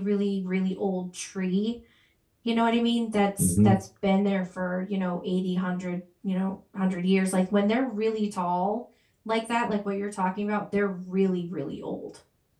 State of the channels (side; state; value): both; identical; correlation 1.00